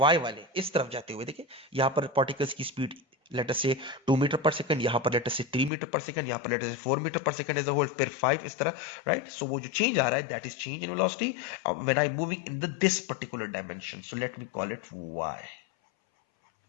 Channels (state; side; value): drops out; right; at 5.7 s